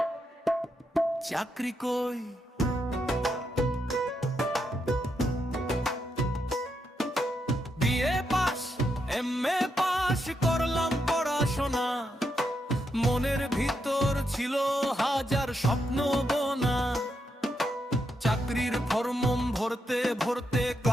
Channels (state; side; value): normal; both; correlation 0.82